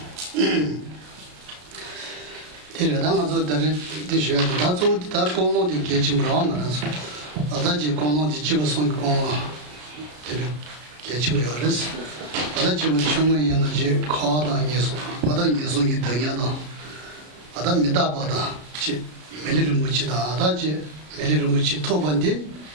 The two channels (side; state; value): left; late; 33 ms